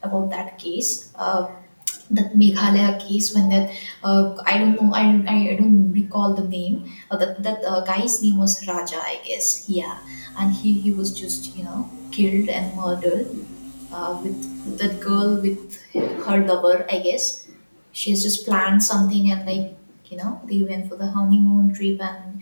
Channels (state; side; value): inverted; both; correlation -1.00